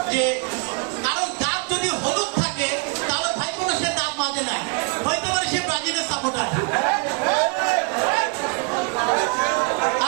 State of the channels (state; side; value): quieter; left; 33.1 dB